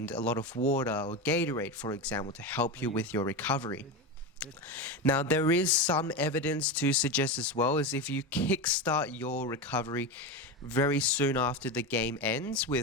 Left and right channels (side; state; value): both; normal; correlation 0.18